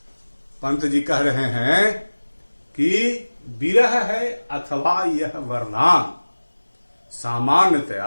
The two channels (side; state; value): both; inverted; correlation -1.00